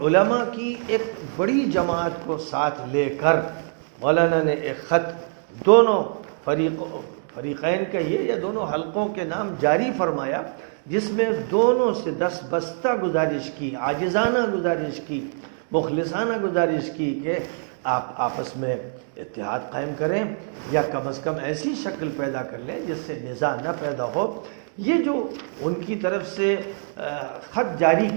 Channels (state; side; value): silent; left; digital silence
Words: علماء کی ایک بڑی جماعت کو ساتھ لے کر مولانا نے ایک خط دونوں فریقین کا یہ یا دونوں حلقوں کے نام جاری فرمایا، جس میں دونوں سے دستبستہ گزارش کی، عاجزانہ گزارش کی، مخلصانہ گزارش کی کہ آپ آپس میں اتحاد قائم کریں، یا کم از کم ایسی شکل پیدا کر لیں جس سے نزاع نہ پیدا ہو۔ یہ جو ان کی طرف سے خط جاری